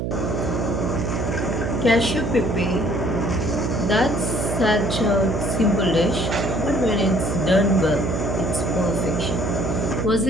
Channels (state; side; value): noise; right; hum, 1 dB below the sound